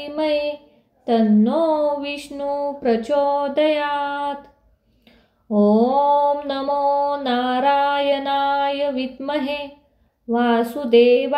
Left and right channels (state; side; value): identical; both; correlation 1.00